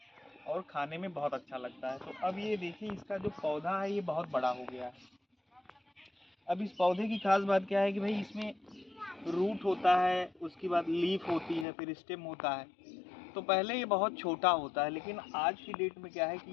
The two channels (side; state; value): right; drops out; at 11.7 s